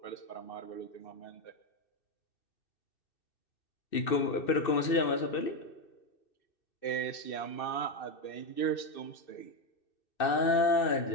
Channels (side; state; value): right; late; 2.6 ms